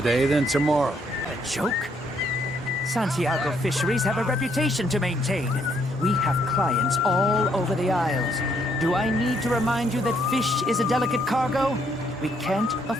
then tomorrow. A joke? Santiago Fisheries have a reputation to maintain. We have clients all over the Isles. Do I need to remind you that fish is a delicate cargo? We can't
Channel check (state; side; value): normal; both; correlation 0.70